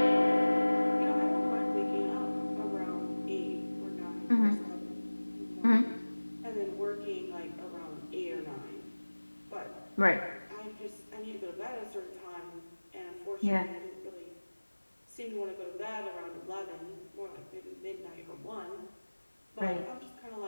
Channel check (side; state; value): both; inverted; correlation -1.00